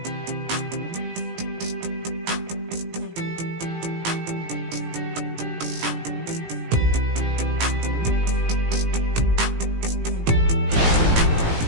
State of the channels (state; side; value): late; left; 18 ms